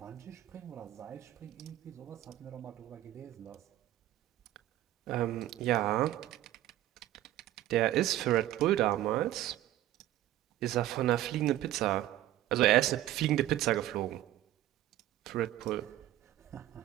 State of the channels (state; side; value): quieter; left; 13.8 dB